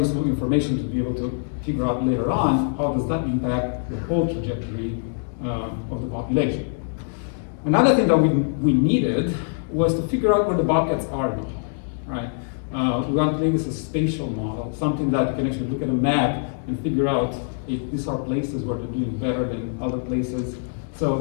information to be able to figure out later on how does that impact the whole trajectory of the population. Another thing that we needed was to figure out where the bobcats are now, right? We want to make this a spatial model, something that you can actually look at a map and figure out if these are places where they're doing better than other places.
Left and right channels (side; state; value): right; silent; 63 dB below the other